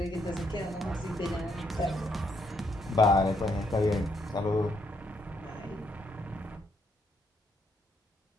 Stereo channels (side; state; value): both; normal; correlation 0.74